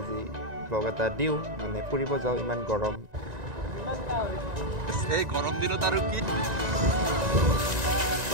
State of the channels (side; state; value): left; late; 1.9 ms